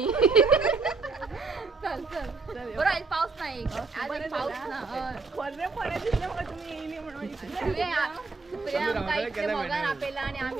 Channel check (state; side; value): quieter; left; 4.2 dB